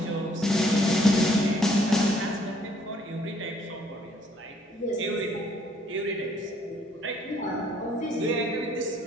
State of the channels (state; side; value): normal; both; correlation 0.64